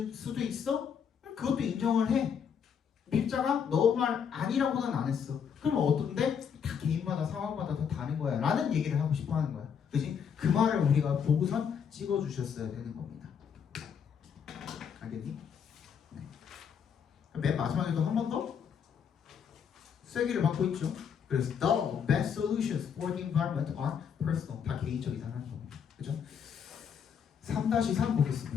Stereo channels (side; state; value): right; quieter; 7.3 dB